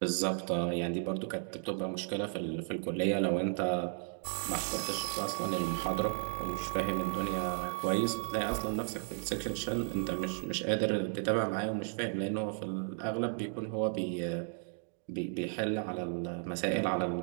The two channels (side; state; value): left; silent; 55 dB below the other